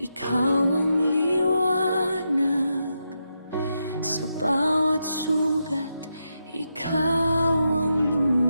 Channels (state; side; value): inverted; both; correlation -0.85